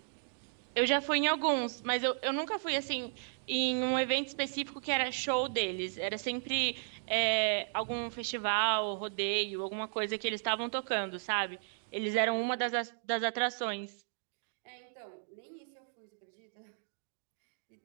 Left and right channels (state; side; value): silent; left; digital silence